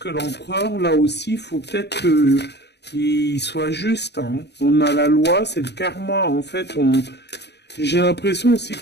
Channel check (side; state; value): right; late; 0.49 ms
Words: l'empereur, là aussi, il faut peut-être qu'il soit juste. Hein. On a la loi, c'est le karma. En fait, j'ai l'impression aussi